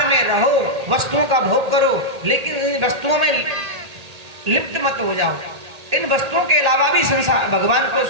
में रहो, वस्तुओं का भोग करो, लेकिन इन वस्तुओं में लिप्त मत हो जाओ। इन वस्तुओं के अलावा भी संसार, भगवान को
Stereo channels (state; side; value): late; left; 1.8 ms